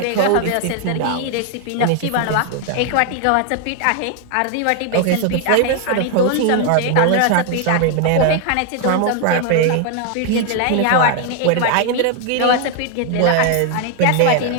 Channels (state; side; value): different; both; correlation 0.00